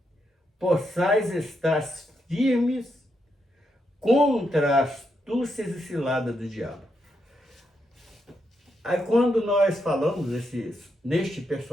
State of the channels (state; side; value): normal; both; correlation 0.81